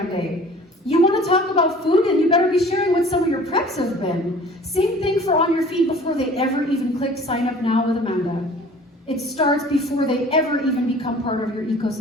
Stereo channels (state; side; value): normal; both; correlation 0.48